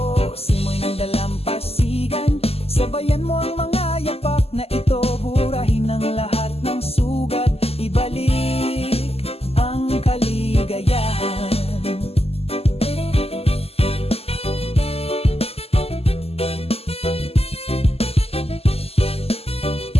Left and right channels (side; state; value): right; late; 0.29 ms